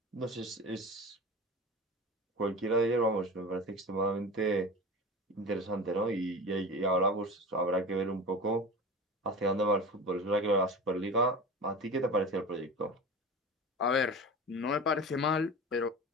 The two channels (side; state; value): both; normal; correlation 0.31